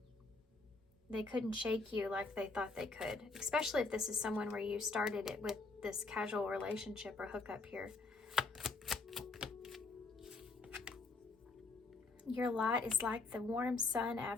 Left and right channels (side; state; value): right; quieter; 3.7 dB